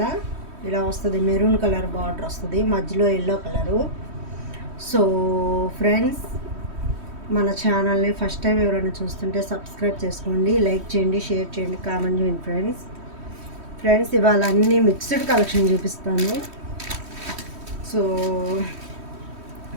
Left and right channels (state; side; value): late; left; 3.1 ms